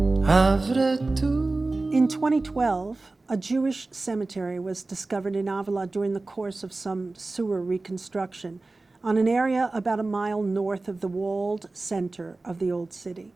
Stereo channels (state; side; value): quieter; left; 3.3 dB